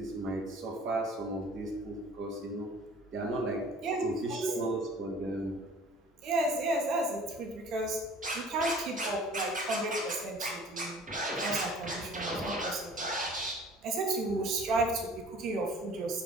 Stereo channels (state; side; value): normal; both; correlation 0.49